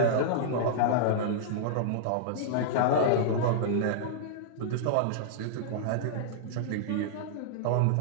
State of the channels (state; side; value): different; both; correlation -0.02